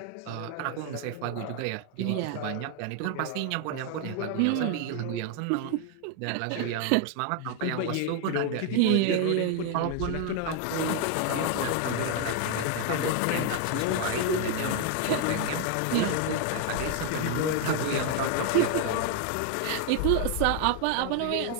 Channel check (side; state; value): both; different; correlation 0.01